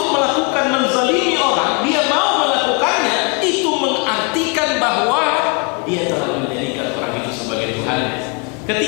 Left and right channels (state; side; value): quieter; right; 32.3 dB